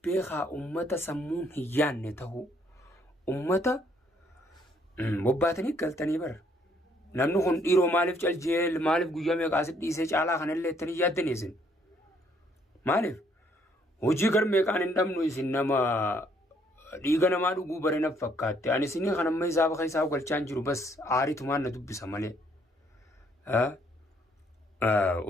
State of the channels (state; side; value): normal; both; correlation 0.67